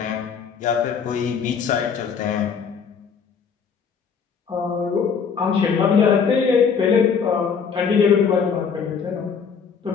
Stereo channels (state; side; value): quieter; right; 6.3 dB